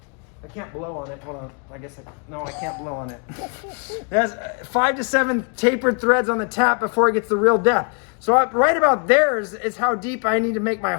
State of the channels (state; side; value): quieter; right; 39.5 dB